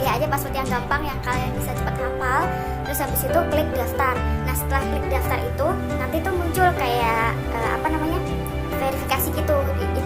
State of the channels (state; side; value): identical; both; correlation 1.00